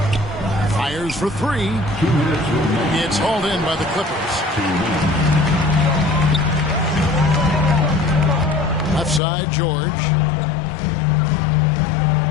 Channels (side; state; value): right; drops out; at 9.2 s